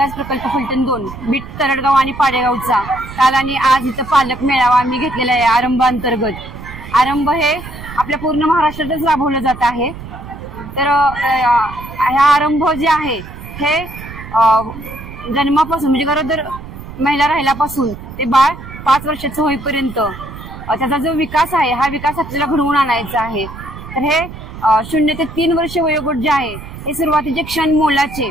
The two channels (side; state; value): right; noise; rumble, 13 dB below the sound